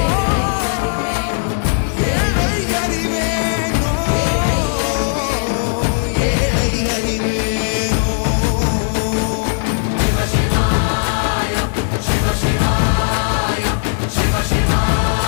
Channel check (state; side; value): silent; right; digital silence